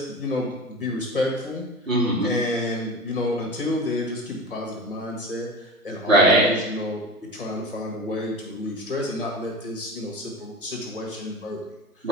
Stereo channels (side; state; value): both; normal; correlation 0.31